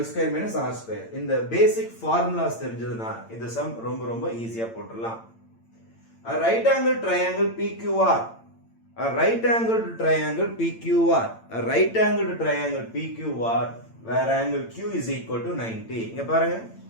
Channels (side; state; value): right; late; 8.8 ms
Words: L square minus R square. இந்த basic formulas தெரிஞ்சதுன்னா இந்த sum ரொம்ப ரொம்ப ஈஸியா போட்டுடலாம். A right angle triangle PQR, a right angled triangle PQR, a right angled triangle PQR where angle Q is equal to 90. இங்க பாருங்க,